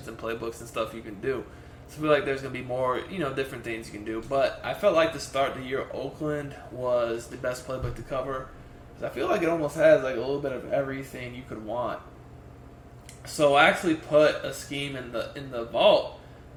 and playbooks and stuff you can do. So I feel like there's going to be more, different things you can do. But I felt like to start the year, Oakland was the best playbook to cover, because I feel like it almost has, a little bit of everything you could want. So I actually put a scheme in the vault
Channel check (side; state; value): both; identical; correlation 1.00